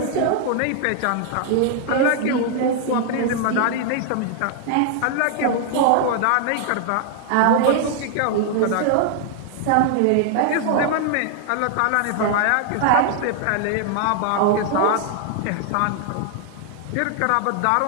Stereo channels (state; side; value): different; both; correlation 0.00